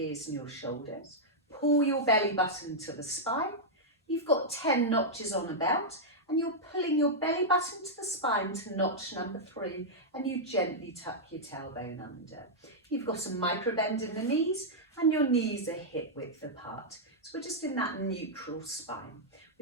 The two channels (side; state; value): both; normal; correlation -0.06